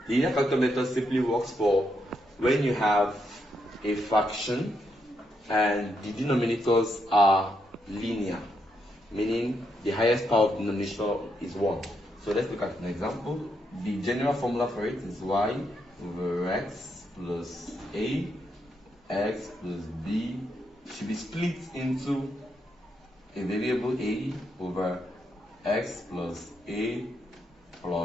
linear factor method simply works for when you have a fraction and the denominators are linear, meaning the highest power of the denominator is 1. So let's look at an example. The general formula for it is y over x plus a, x plus b should be split into a variable a over x plus a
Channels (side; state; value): both; normal; correlation 0.80